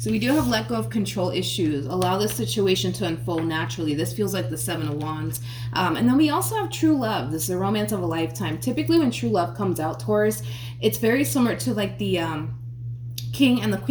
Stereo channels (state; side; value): identical; both; correlation 1.00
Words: we do have let go of control issues. Allow this situation to unfold naturally. This feels like the Seven of Wands. And then we also have true love. This is a romance of a lifetime. Typically when true love comes out, Taurus, it's very similar to like the King and the